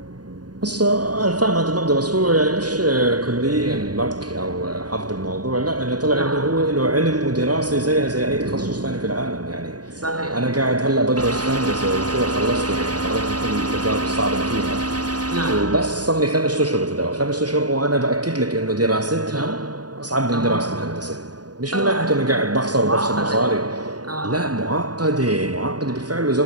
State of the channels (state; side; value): late; left; 0.69 ms